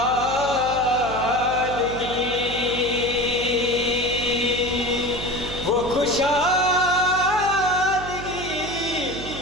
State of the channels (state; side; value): noise; right; hum, 11 dB below the sound